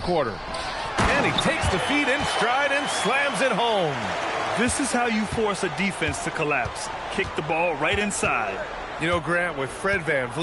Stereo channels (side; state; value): both; identical; correlation 1.00